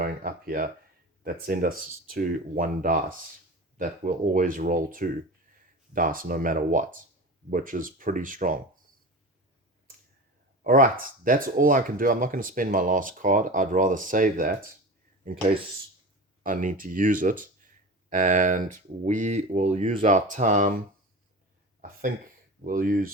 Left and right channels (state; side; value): normal; both; correlation 0.31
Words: up here that send us to 1 dice. That will always roll 2 dice no matter what, which is pretty strong. All right, that's all I can do. I'm not going to spend my last card. I'd rather save that in case I need to use it. And we will use our time. I think we'll